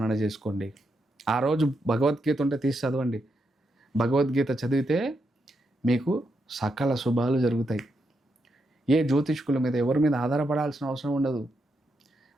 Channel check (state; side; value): normal; both; correlation 0.82